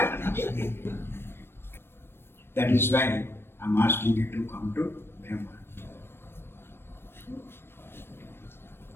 That is why I'm asking you to come to Brahma.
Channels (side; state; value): right; late; 0.11 ms